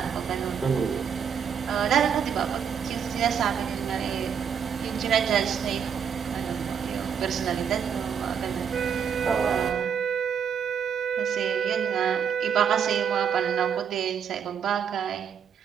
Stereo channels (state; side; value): quieter; left; 7.5 dB